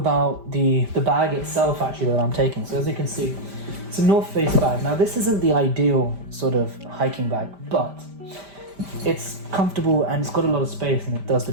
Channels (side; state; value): left; late; 5.1 ms